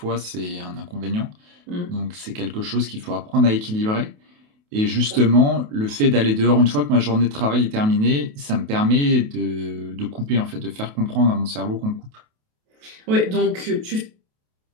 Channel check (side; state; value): left; late; 28 ms